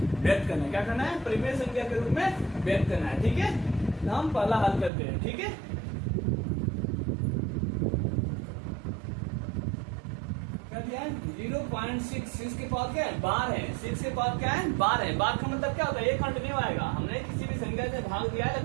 व्यक्त करना है। क्या करना है, परिमेय संख्या के रूप में व्यक्त करना है। ठीक है, तो हम पहला हल करते हैं। ठीक है, क्या दिया है, 0.6 के पास क्या है, बार है। 6 के पास क्या है, बार है। बार का मतलब क्या होता है, ये कंटिन्यू आएगा। हमने किसी भी संख्या से भाग दिया है,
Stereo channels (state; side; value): drops out; left; at 4.9 s